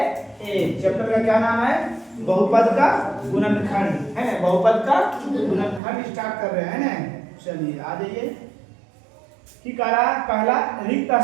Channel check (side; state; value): left; drops out; at 5.8 s